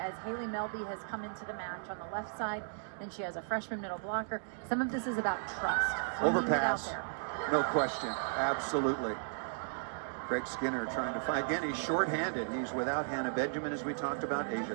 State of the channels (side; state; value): left; silent; digital silence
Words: Haley Melby has come into the match on the left side, and she has a freshman middle blocker, some of this is about trust. Overpass, no question, absolutely. Greg Skinner trying to find, again, he's shorthanded. He's without Hannah Benjamin, as we talked about.